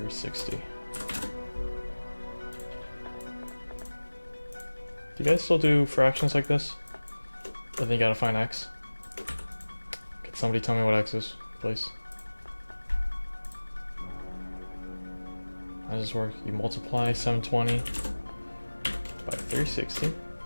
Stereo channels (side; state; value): both; inverted; correlation -1.00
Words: Do you guys still do fractions like this? I think you gotta find x. Could somebody tell me what x is, please? How does this work? You multiply 720 by 360.